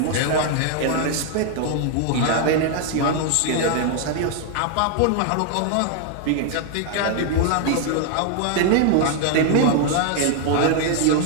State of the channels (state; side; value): different; both; correlation 0.00